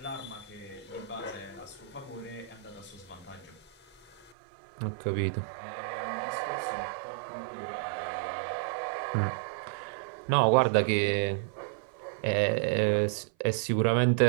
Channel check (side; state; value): left; drops out; at 4.3 s